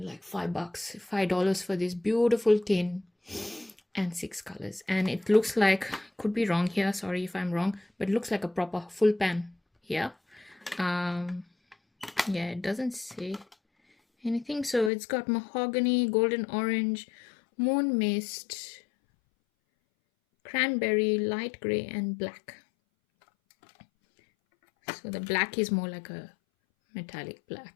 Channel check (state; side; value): drops out; right; at 14.9 s